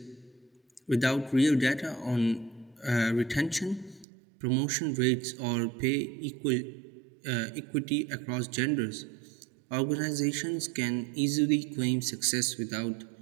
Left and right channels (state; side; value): drops out; left; at 4.0 s